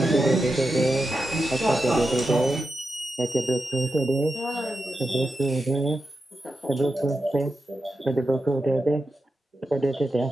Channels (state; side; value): normal; both; correlation 0.89